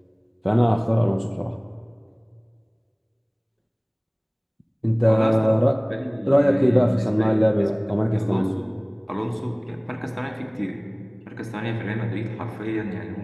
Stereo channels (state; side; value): identical; both; correlation 1.00